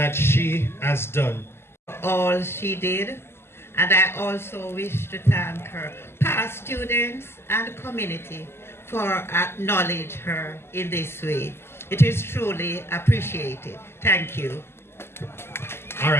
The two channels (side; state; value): right; late; 0.12 ms